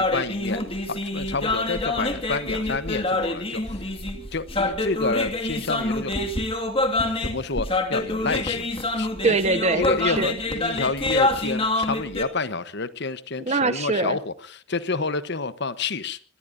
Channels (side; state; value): both; normal; correlation 0.11